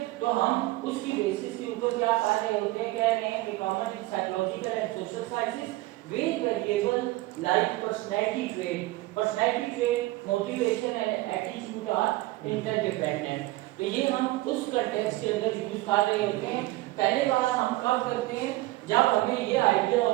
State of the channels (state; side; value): quieter; left; 19.1 dB